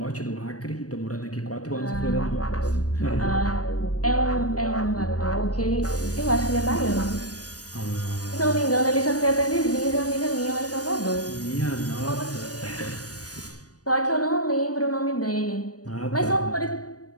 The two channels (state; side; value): late; right; 0.67 ms